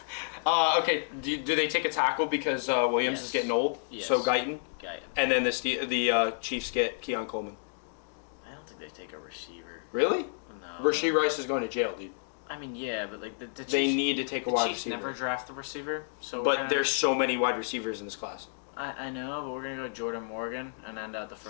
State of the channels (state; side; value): silent; right; digital silence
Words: Okay, do they take a tackle because Williams is getting old? Yes. So Guyton? Guyton. And then the Chiefs get Keon Coleman. I don't think they take a receiver. Really? No. Rasheed Rice is going to jail, dude. I mean, yeah, but like the Chiefs, they need to take a wide receiver. The Chiefs never draft the receiver, so. But there's so many wide receivers in this class. I know, but we're gonna go Jordan Morgan and end out the